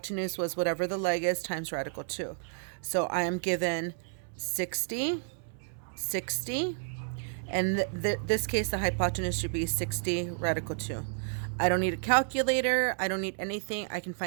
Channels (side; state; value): left; silent; 57 dB below the other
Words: was whatever the leg is times radical 2. So I am given 60, 60, and this case the hypotenuse should be 60 radical 2. I don't need a calculator. I don't need anything. I can